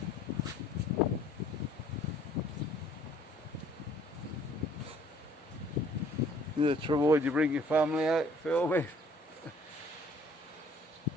To avoid you bring your family out filming.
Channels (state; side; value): normal; both; correlation 0.58